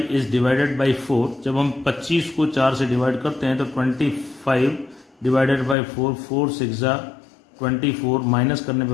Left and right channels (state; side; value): drops out; right; at 5.8 s